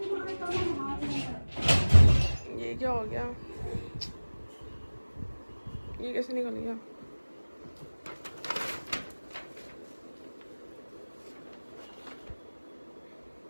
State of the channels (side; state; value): both; inverted; correlation -1.00